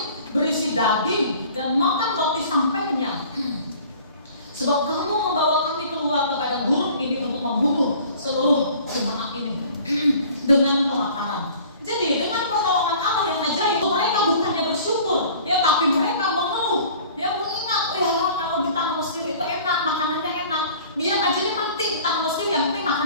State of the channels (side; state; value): both; inverted; correlation -0.48